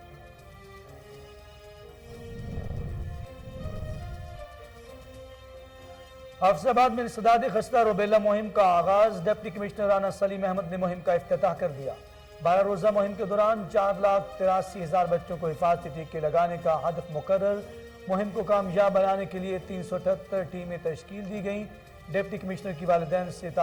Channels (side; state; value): both; identical; correlation 1.00